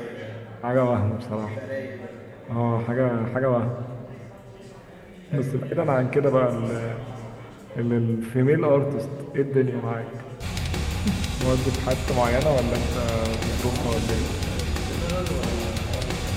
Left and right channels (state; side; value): identical; both; correlation 1.00